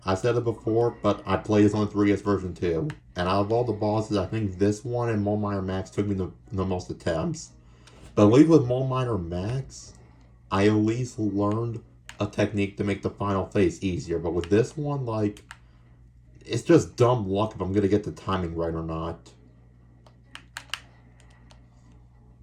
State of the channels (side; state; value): both; identical; correlation 1.00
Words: I said it before, but I played this on the 3DS version too. And out of all the bosses, I think this one and Mole Miner Max took me the most attempts. But at least with Mole Miner Max, I at least learned a technique to make the final phase easier. But with this one, like, it's just dumb luck if I'm gonna get the timing right or not.